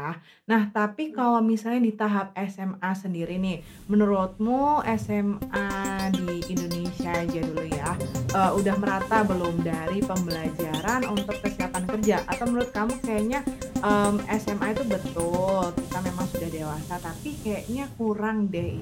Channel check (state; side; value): identical; both; correlation 1.00